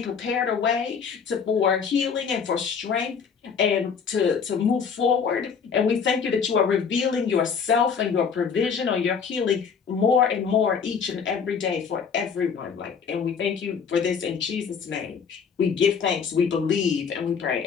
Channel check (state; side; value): quieter; right; 6.3 dB